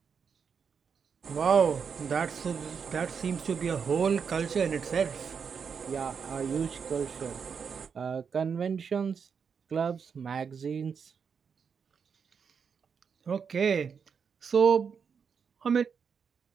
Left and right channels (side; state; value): left; quieter; 6.4 dB